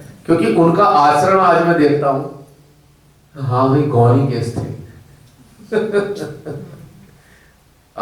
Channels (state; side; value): identical; both; correlation 1.00